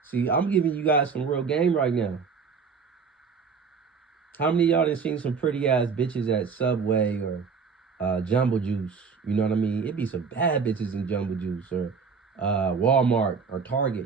See, I'm giving you guys some real game right now. How many of y'all done seen some pretty ass bitches at Subway or Jumbo Juice? You know what I mean? It be some bad bitches in Jumbo Juice or Walmart or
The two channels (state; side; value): quieter; left; 5.6 dB